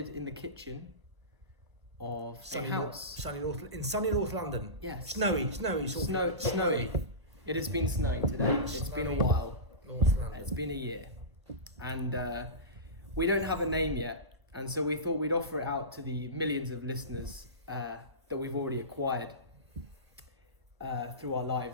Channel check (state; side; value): late; left; 1.0 ms